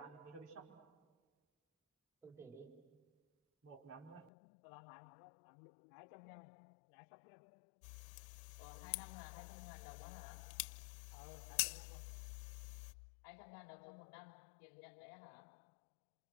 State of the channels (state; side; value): drops out; right; at 4.3 s